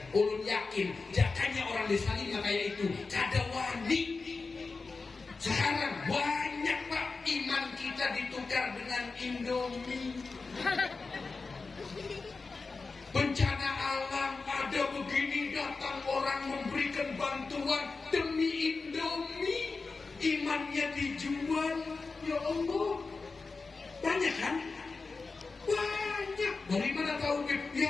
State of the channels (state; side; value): quieter; right; 4.1 dB